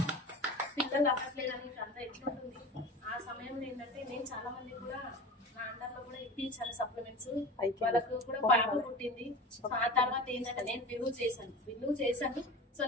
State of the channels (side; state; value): both; normal; correlation 0.33